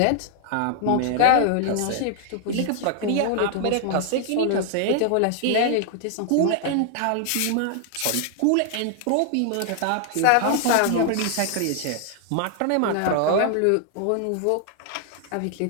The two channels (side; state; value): both; different; correlation 0.00